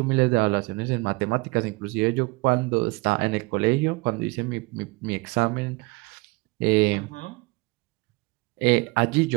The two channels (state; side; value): quieter; left; 25.5 dB